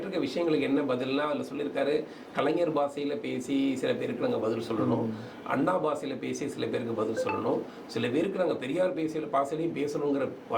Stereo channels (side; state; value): both; identical; correlation 1.00